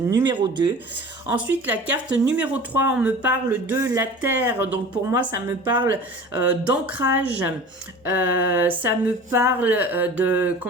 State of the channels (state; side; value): normal; both; correlation 0.39